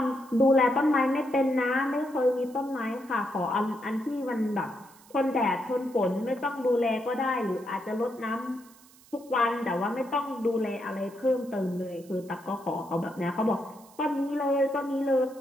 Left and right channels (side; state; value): right; noise; hiss, 25 dB below the sound